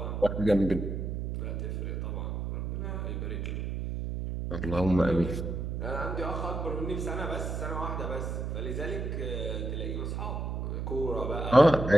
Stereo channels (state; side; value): noise; right; hum, 3 dB below the sound